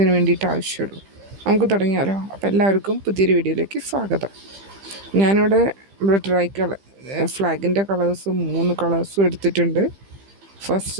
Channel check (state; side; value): late; left; 15 ms